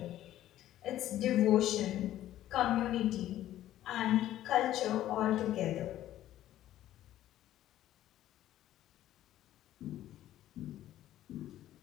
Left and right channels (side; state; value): right; quieter; 13.1 dB